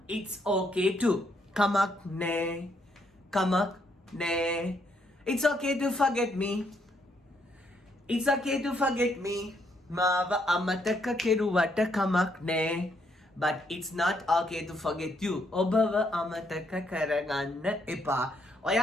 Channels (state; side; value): normal; both; correlation 0.73